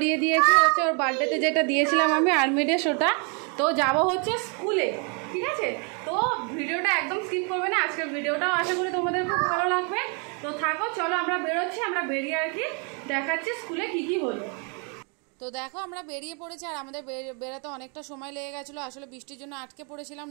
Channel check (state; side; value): quieter; left; 35.7 dB